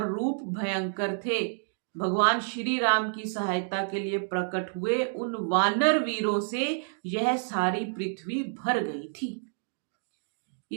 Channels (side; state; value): left; silent; digital silence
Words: रूप भयंकर थे। भगवान श्री राम की सहायता के लिए प्रकट हुए उन वानर वीरों से यह सारी पृथ्वी भर गई थी।